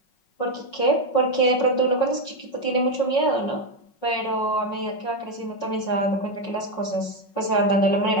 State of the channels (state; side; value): late; right; 5.4 ms